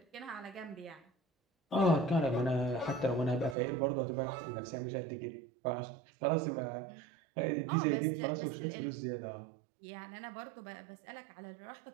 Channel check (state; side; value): drops out; left; at 3.6 s